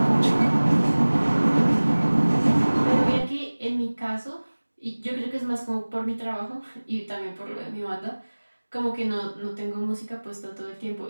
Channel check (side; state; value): both; inverted; correlation -1.00